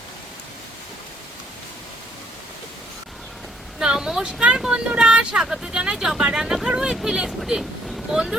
নমস্কার বন্ধুরা, স্বাগত জানাই জবা রান্নাঘর উইথ ভিলেজ ফুডে।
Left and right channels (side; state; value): both; normal; correlation 0.67